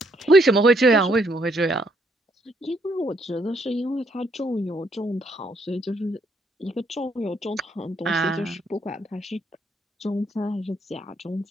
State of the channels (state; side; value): normal; both; correlation 0.71